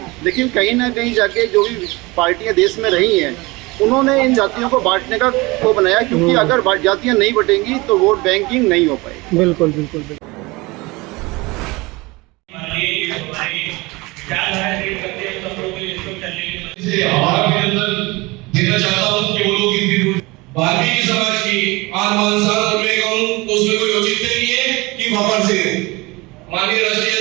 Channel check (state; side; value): quieter; left; 23.5 dB